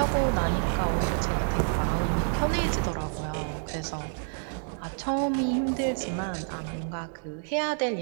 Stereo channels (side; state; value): left; silent; 59 dB below the other